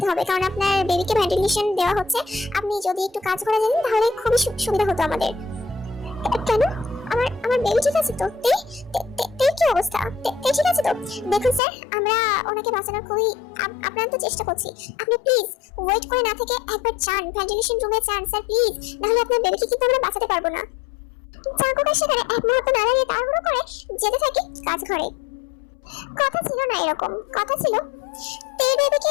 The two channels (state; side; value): drops out; right; at 11.6 s